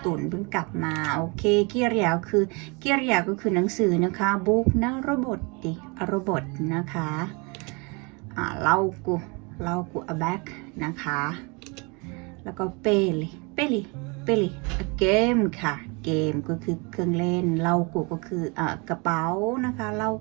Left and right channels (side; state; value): left; quieter; 30.0 dB